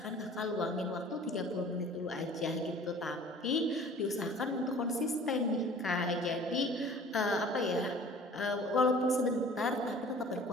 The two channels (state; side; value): normal; both; correlation 0.47